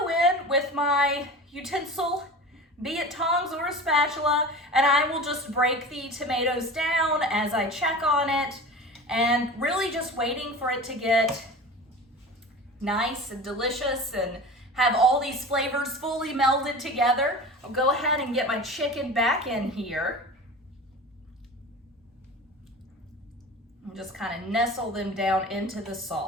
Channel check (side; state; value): both; normal; correlation 0.35